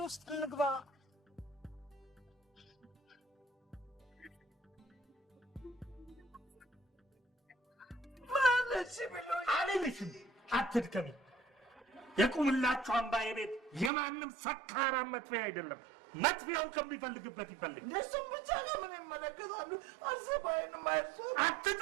ውስጥ እንግባ። አልልሽም፣ አትድከሚ። የቁምላችሁ አምባዬ ቤት የማንም ሰካራም መጥፊያ አይደለም። መጥፊያውን ከሚፈልግበት ይፈልግ። እሱም ብቻ ለምን ይመለከታሉ? አርሴማዬን ማየት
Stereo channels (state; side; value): drops out; left; at 13.9 s